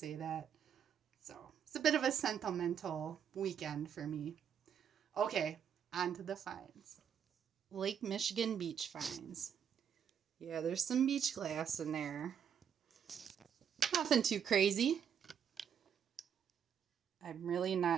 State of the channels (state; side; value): quieter; left; 8.1 dB